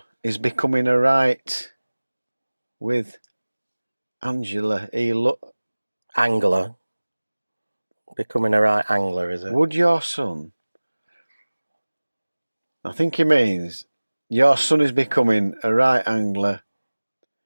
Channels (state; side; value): inverted; both; correlation -1.00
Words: is becoming a right with Angela? Angler. Becoming a right angler, is it? Would your son? I think he means your son is becoming a right angler.